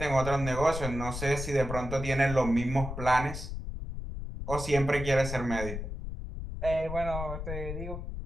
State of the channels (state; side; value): noise; left; rumble, 7 dB below the sound